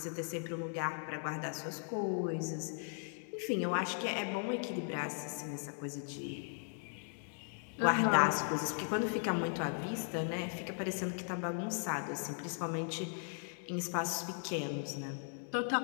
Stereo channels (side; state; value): right; silent; 53 dB below the other